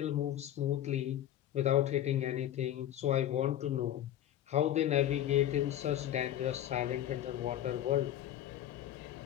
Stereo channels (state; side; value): quieter; right; 11.8 dB